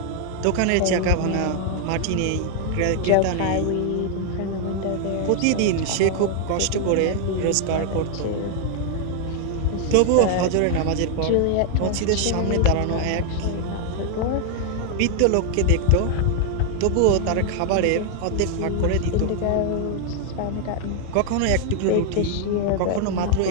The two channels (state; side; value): different; both; correlation 0.00